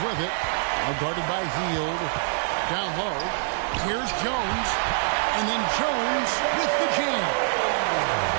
it. Now guarded by Hield. Down low. Here's Jones. And then Jones with the jam.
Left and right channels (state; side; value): silent; left; digital silence